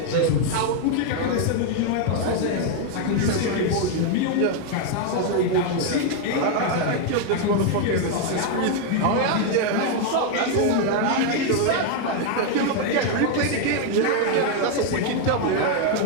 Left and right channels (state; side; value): different; both; correlation 0.01